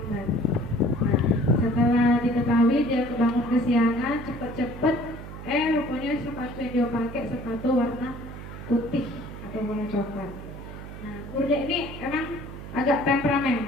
Nah, setelah diketahui dia kebangun kesiangan, cepet-cepet, rupanya sepatu yang dia pakai sepatu warna putih atau warna coklat. Nah, gurunya ini emang agak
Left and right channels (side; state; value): right; noise; hum, 12 dB below the sound